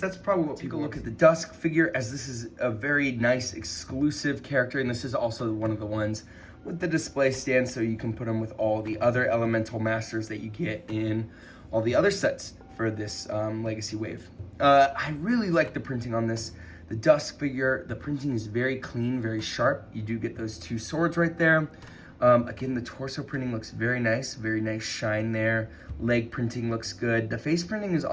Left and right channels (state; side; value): identical; both; correlation 1.00